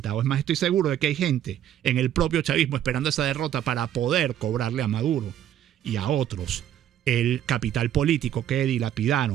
Es más, estoy seguro de que hay gente en el propio chavismo esperando esa derrota para poder cobrarle a Maduro y a otros el capital político que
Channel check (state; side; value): quieter; left; 11.0 dB